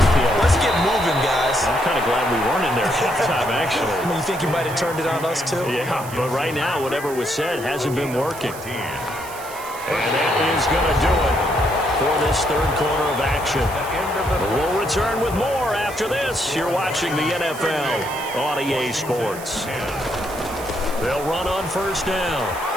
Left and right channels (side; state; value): right; noise; hiss, 15 dB below the sound